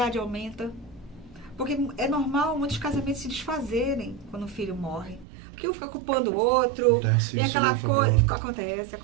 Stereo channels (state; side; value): drops out; left; at 5.2 s